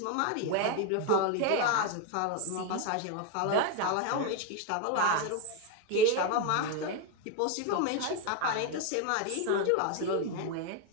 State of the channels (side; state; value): both; different; correlation 0.02